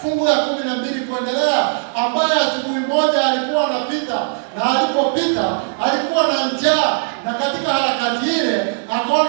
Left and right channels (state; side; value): silent; left; digital silence